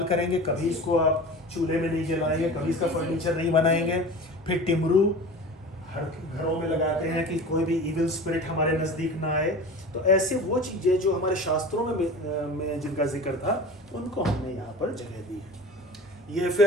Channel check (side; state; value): both; normal; correlation 0.36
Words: करेंगे, कभी इसको आप चूल्हे में नहीं जलाएंगे, कभी इसका फर्नीचर नहीं बनाएंगे। फिर टिमरू हर घरों में लगाते हैं कि कोई भी इविल स्पिरिट हमारे नज़दीक ना आए। तो ऐसे वो चीज़ें जो हमारे शास्त्रों में जिनका जिक्र था उनको हमने यहाँ पर जगह दी है। ये